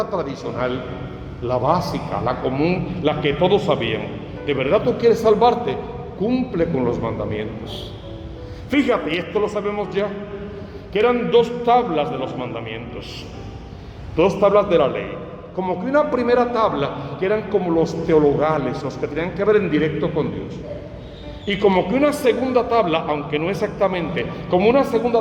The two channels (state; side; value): identical; both; correlation 1.00